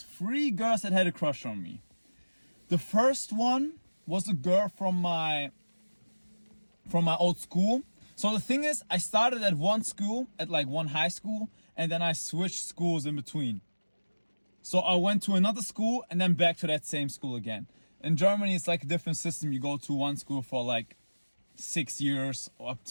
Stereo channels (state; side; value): inverted; both; correlation -1.00